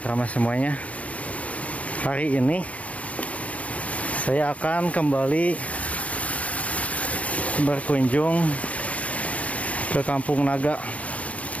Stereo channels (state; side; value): late; right; 0.067 ms